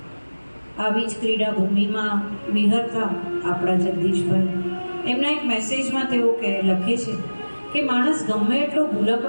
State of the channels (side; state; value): both; inverted; correlation -1.00